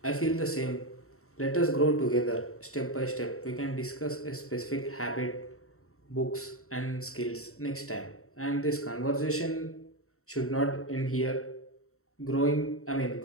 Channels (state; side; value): late; right; 0.63 ms